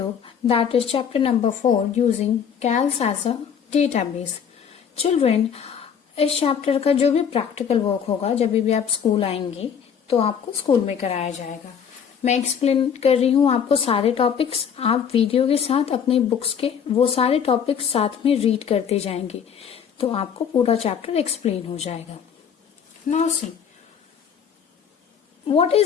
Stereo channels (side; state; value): right; quieter; 7.6 dB